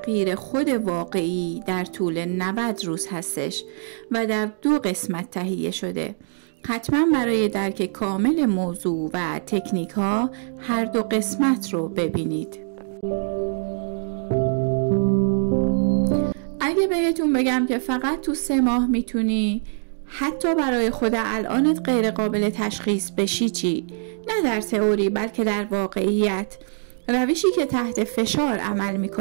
خود واقعی در طول 90 روز هستش و در 2 قسمت تهیه شده. حتما برای درک کامل موضوع و تکنیک ها هر 2 قسمت رو ببینید. اگه بهتون بگم که فقط تو 3 ماه میتونی حتی برای خود الانت غیر قابل تشخیص بشی چی؟ نه در تئوری بلکه در واقعیت، روشی که تحت فشار عمل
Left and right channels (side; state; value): left; silent; digital silence